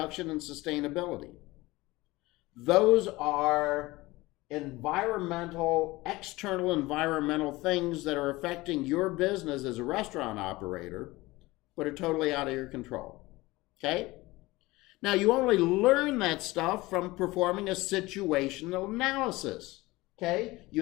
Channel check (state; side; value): quieter; right; 20.4 dB